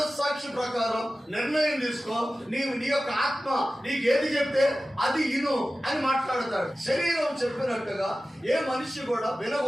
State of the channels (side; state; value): both; normal; correlation 0.95